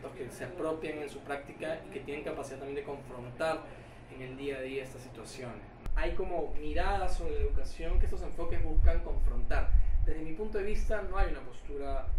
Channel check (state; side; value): identical; both; correlation 1.00